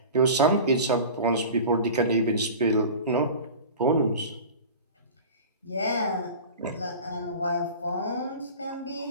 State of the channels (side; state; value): both; inverted; correlation -0.35